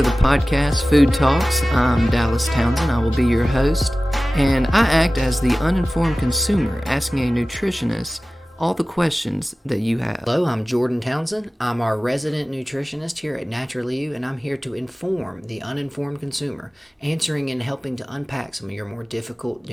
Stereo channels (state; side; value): normal; both; correlation 0.97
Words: the podcast, Food Talks. I'm Dallas Townsend. I will be your host, and I act as the uninformed consumer, asking a nutritionist all the questions that you have. Hello, I'm Jordan Townsend. I'm our resident nutritionist here at Naturally You, and I'm here to inform the uninformed consumer, answering and helping to unpack some of your more difficult